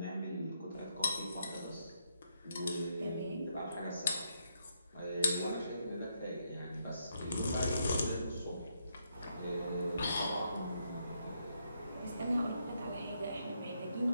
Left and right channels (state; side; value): inverted; both; correlation -0.77